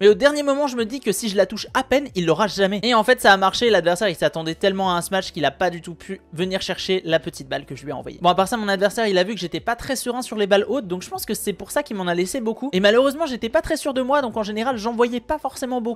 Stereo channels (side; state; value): both; identical; correlation 1.00